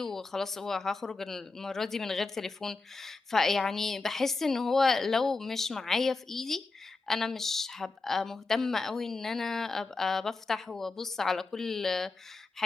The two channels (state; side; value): quieter; right; 3.8 dB